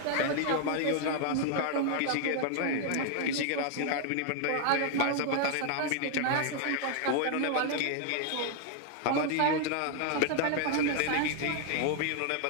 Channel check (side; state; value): both; different; correlation 0.00